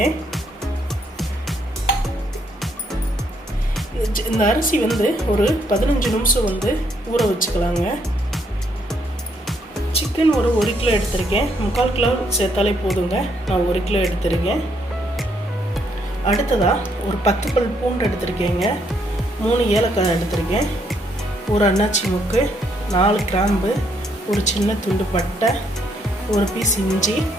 இந்த அரிசி ஒரு 15 நிமிஷம் ஊற வச்சுக்கலாங்க. சிக்கன் ஒரு 1 கிலோ எடுத்திருக்கேன். 3/4 கிலோ சேர்த்தாலே போதுங்க. நான் 1 கிலோ எடுத்திருக்கேன். அடுத்ததாக ஒரு 10 பல் பூண்டு எடுத்திருக்கேங்க. 3 ஏலக்காய் எடுத்திருக்கேன். ஒரு அன்னாச்சி முக்கு, 4 கிராம்பு, ஒரு சின்ன துண்டு பட்டை, ஒரு பீஸ் இஞ்சி.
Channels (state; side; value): normal; both; correlation 0.72